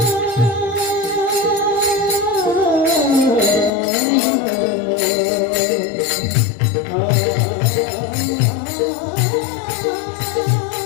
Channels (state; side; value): drops out; right; at 3.7 s